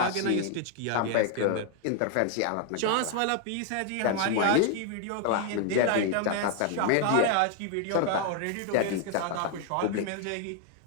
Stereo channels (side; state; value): both; different; correlation 0.00